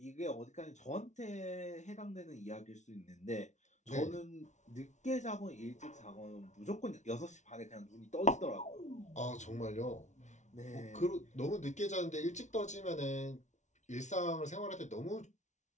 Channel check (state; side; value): late; right; 0.34 ms